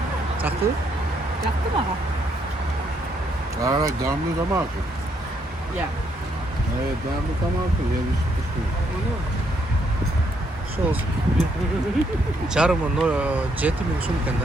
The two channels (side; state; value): both; normal; correlation 0.74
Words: Çaktı? Yaktı mı ha? Evet, damlı da mı akıyor? Ya. Evet, damlı da mı akıyor? Yani sos. Jarmo no jeti min sun